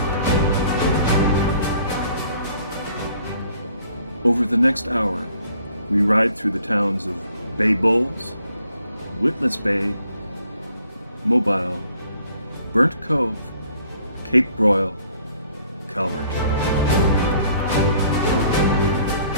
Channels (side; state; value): both; inverted; correlation -0.61